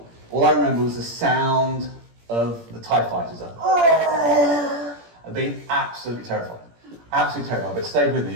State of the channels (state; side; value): late; left; 17 ms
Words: All I remember was the sound of the TIE fighters. I've been absolutely terrified. Absolutely terrified, but it stayed with me.